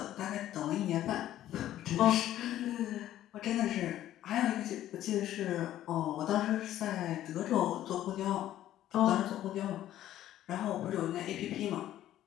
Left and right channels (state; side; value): quieter; right; 12.9 dB